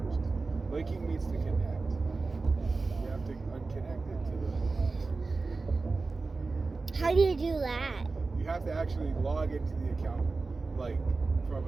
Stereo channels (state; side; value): quieter; left; 3.8 dB